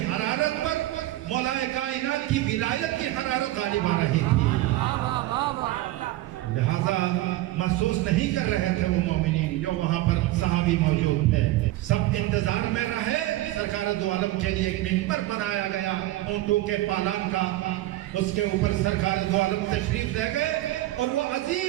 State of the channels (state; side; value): quieter; left; 16.3 dB